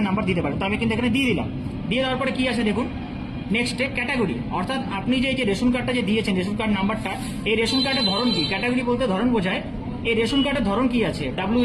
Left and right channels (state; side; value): identical; both; correlation 1.00